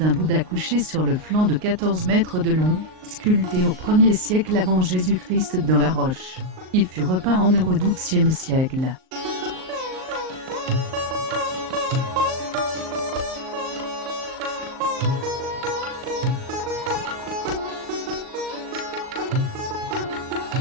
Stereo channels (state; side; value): late; left; 38 ms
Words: un Bouddha couché sur le flanc de 14 mètres de long, sculpté au 1er siècle avant Jésus-Christ dans la roche. Il fut repeint en or au XIIe siècle.